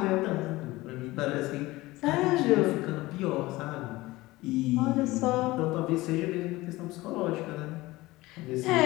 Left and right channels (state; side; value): quieter; right; 19.5 dB